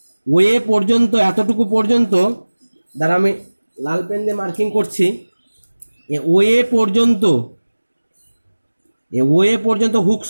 ওয়ে পর্যন্ত, এতটুকু পর্যন্ত, দ্বারা আমি লাল পেন দিয়ে মার্কিং করছি, ওয়ে পর্যন্ত, ওয়ে পর্যন্ত হুকস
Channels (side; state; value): both; inverted; correlation -1.00